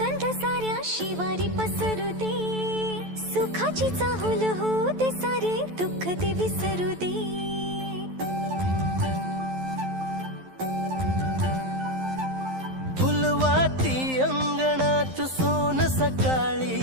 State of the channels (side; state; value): left; late; 11 ms